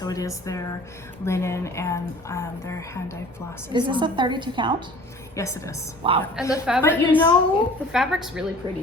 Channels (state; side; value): normal; both; correlation 0.47